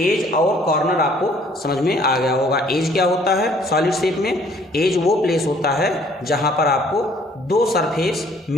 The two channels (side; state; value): both; normal; correlation 0.59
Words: और कॉर्नर आपको समझ में आ गया होगा। एज क्या होता है सॉलिड शेप में? एज वो प्लेस होता है जहां पर आपको 2 सरफेस